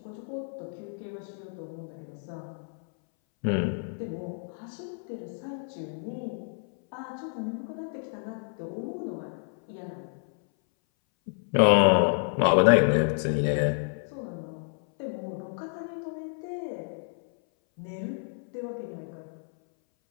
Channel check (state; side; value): silent; right; 58 dB below the other